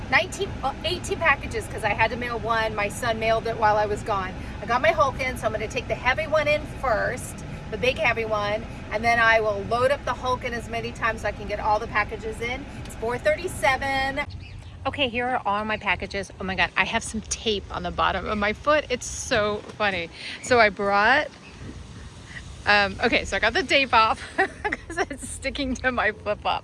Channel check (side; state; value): both; identical; correlation 1.00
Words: 18 packages because I had to mail one. My son mailed it while I was gone. I got my Hulk in, so I'm gonna take the heavy one in first, the big heavy one, and then I will load up the Hulk in as many times so I can get all the packages in. It's 4:37. Okay, here are all my packages. Oh my God, I have some tape on the bottom of my foot. It's so funny. So I brought, okay, so I got the tape off because it's sticking to my flip-flop.